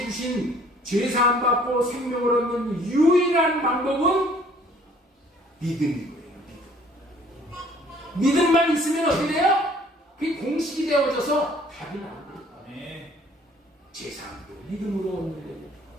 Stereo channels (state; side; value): normal; both; correlation 0.57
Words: 주신 죄사함 받고 생명을 얻는 유일한 방법은 믿음이고요. 믿음만 있으면 어떻게 돼요? 그게 공식이 되어져서 답이 나옵니다. 죄사함도 믿음으로 얻는 거고,